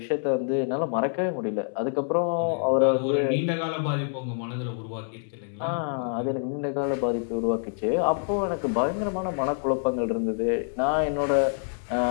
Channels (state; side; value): silent; right; 60 dB below the other